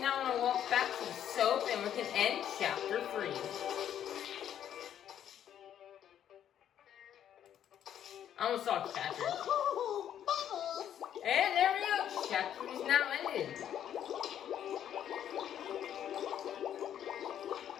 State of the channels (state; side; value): quieter; right; 10.1 dB